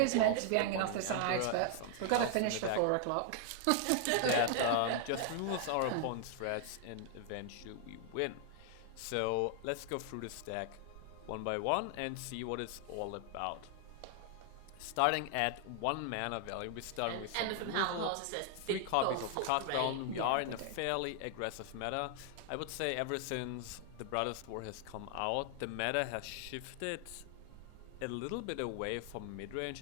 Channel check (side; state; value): both; different; correlation 0.00